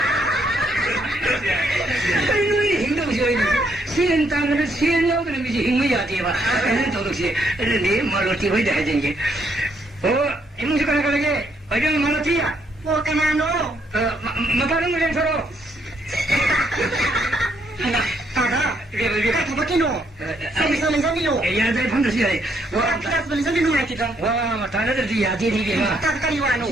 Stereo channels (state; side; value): normal; both; correlation 0.73